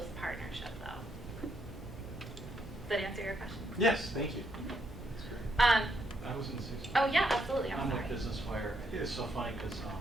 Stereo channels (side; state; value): both; normal; correlation 0.76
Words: partnership, though. Does that answer your question? Yes, thank you. That's great. I was in the 60s. Oh, yeah, absolutely. I'm I'm sorry. with Business Wire. I think it's so funny because